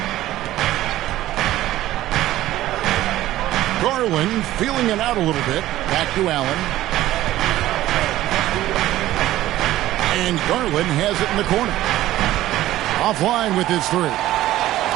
Garland feeling it out a little bit. Back to Allen. And Garland has it in the corner. Offline with his 3.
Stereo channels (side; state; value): left; quieter; 14.8 dB